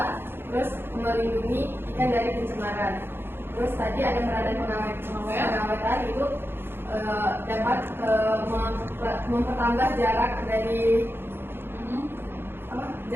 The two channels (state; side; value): late; left; 0.11 ms